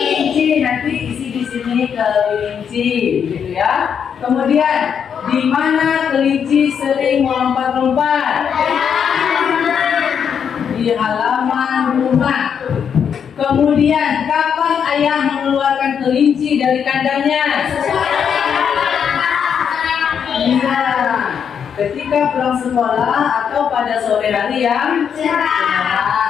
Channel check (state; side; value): quieter; right; 7.5 dB